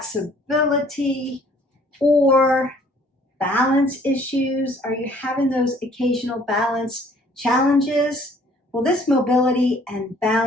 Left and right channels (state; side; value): normal; both; correlation 0.58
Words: or balance issues? Are you having those occasional balance challenges? Well, this mobility and